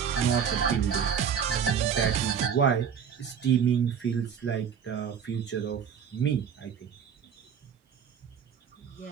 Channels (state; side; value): quieter; left; 7.5 dB